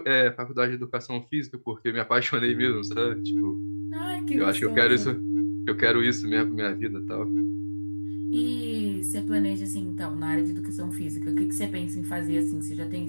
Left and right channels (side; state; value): both; inverted; correlation -1.00